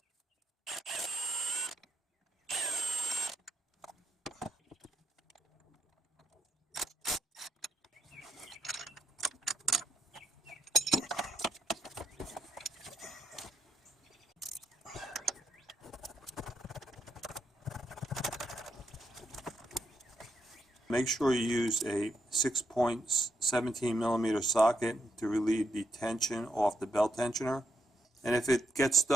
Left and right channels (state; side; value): normal; both; correlation 0.78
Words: Make sure you use a 6.17 millimeter socket to relieve the tension off the belt tensioner. And if it gets